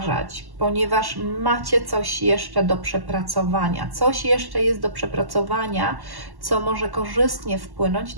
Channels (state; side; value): late; left; 1.1 ms